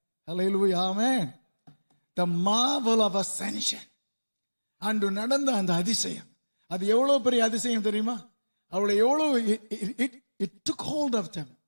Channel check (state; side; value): inverted; both; correlation -1.00